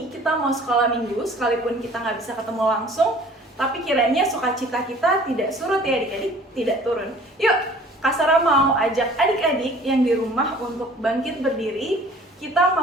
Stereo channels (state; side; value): normal; both; correlation 0.50